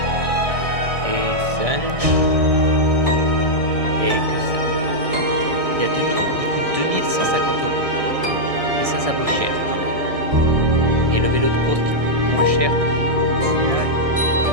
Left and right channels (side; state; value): left; late; 1.6 ms